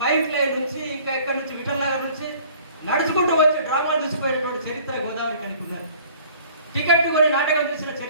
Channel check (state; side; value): inverted; both; correlation -0.51